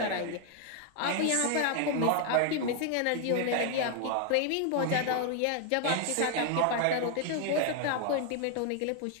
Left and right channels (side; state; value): both; different; correlation 0.00